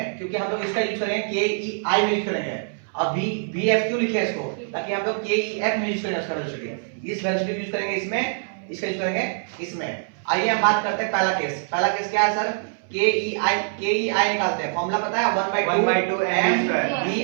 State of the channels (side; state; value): left; silent; 63 dB below the other